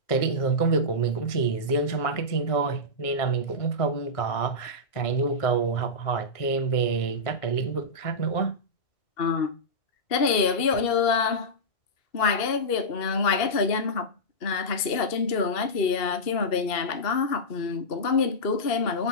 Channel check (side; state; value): right; late; 2.7 ms